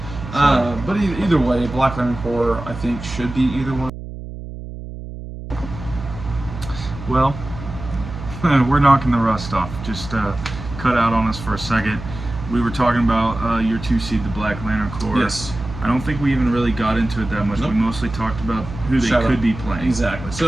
But either way, Black Lantern Corps, I think, should be either one. Well, we're knocking the rust off. Just cut out on us for a second. We were talking about your 2 seed, the Black Lantern Corps. Yes. I don't think we even really got into it that much. Nope. We mostly talked about who they could be playing. Exactly.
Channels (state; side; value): noise; right; hum, 11 dB below the sound